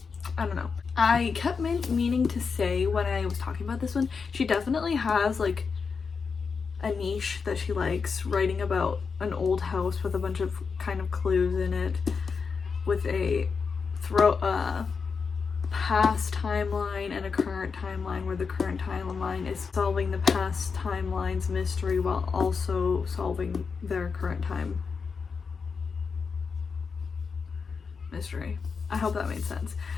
I don't know. I kept meaning to say when I was talking about this one, she definitely has like a niche that she likes, writing about an old house with a bunch of kind of clues in it, with a past timeline and a current timeline, where the current timeline is solving the past timeline's mystery while also solving their current time mystery. I hope that made sense,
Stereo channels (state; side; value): quieter; right; 5.4 dB